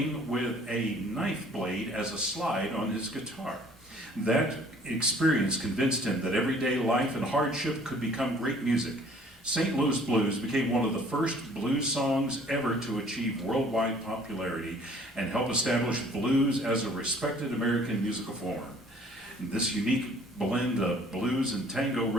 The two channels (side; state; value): both; normal; correlation 0.55